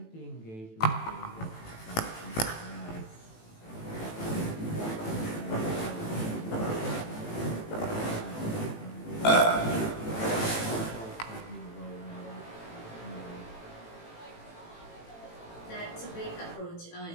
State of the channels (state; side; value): late; right; 18 ms